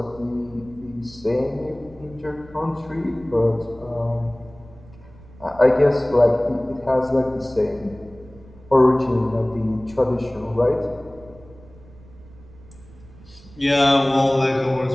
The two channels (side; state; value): right; noise; rumble, 22 dB below the sound